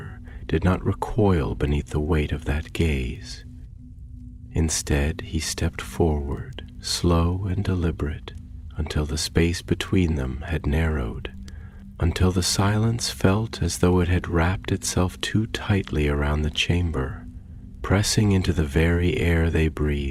did not recoil beneath the weight of that gaze. Instead, he stepped forward, slow and deliberate, until the space between them had narrowed, until the silence felt as though it had wrapped itself too tightly around the chamber, pressing into the very air they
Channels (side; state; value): both; identical; correlation 1.00